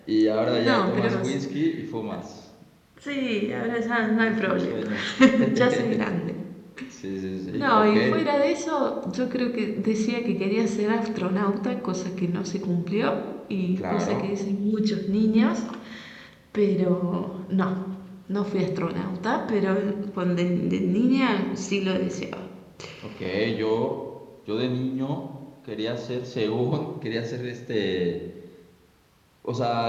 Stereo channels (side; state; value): both; identical; correlation 1.00